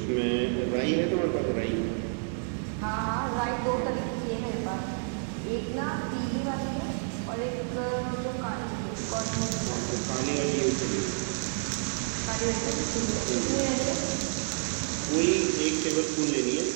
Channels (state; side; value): silent; left; 58 dB below the other